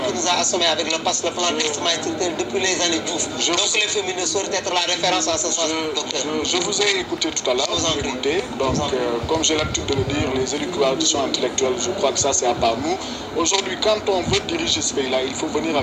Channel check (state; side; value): identical; both; correlation 1.00